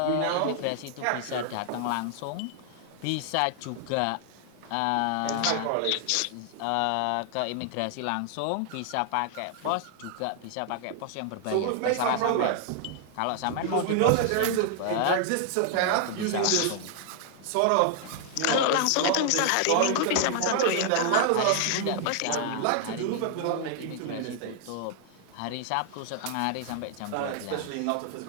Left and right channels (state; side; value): different; both; correlation 0.00